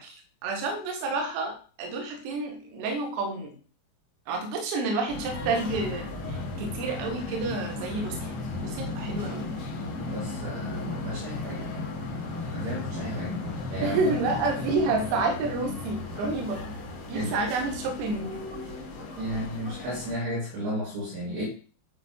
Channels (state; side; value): late; left; 24 ms